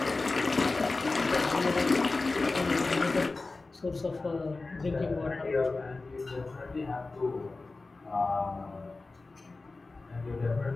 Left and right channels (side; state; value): right; quieter; 3.5 dB